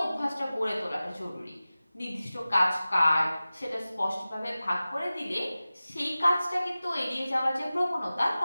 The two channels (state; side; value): inverted; both; correlation -0.96